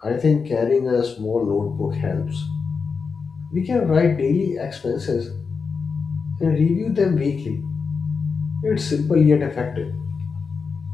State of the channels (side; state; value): right; quieter; 5.2 dB